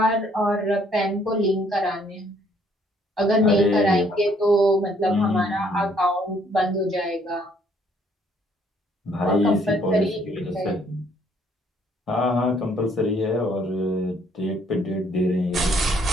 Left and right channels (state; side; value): normal; both; correlation 0.65